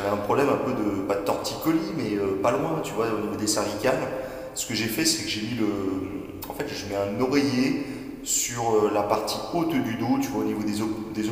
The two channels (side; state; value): both; identical; correlation 1.00